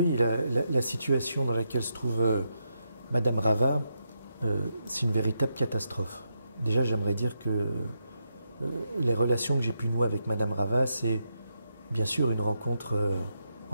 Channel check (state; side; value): inverted; both; correlation -0.83